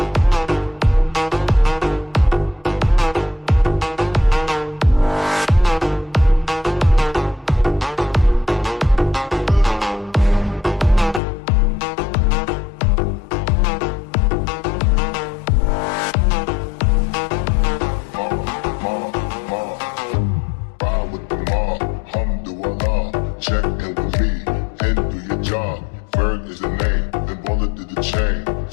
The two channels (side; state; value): right; drops out; at 11.2 s